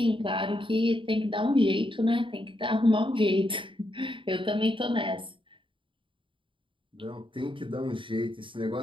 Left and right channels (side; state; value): left; late; 0.25 ms